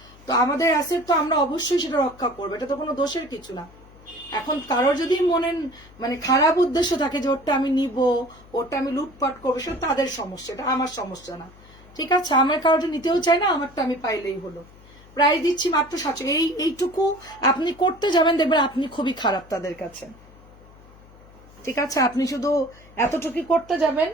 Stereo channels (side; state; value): left; noise; hum, 24 dB below the sound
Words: তো আমাদের অ্যাসেট তো আমরা অবশ্যই সেটা রক্ষা করবো, এটা তো কোনো দোষের কিছু না। এখন কারোর যদি মনে মানে খারাপ উদ্দেশ্য থাকে যে ওটা আমি নিব, ওটা আমি লুটপাট করবো, সেটা তাদের সমস্যা, এটা আমার সমস্যা না। ঠিক আছে, আমার কারোটা নিতেও চাই না, আমারটা আমি পাইলেই হলো। প্রায় দিচ্ছি মাত্র 700। এইটুকু আপনি করতে যাবেন, দেখবেন আপনি খুবই খারাপ তাদের কাছে। ঠিক আছে, আপনি শুধু এতটুকু করতে যাবেন